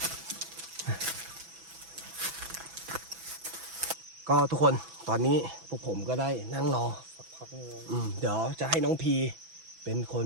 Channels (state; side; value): late; left; 6.0 ms